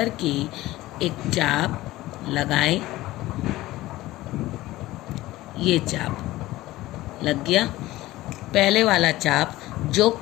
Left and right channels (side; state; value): right; quieter; 17.3 dB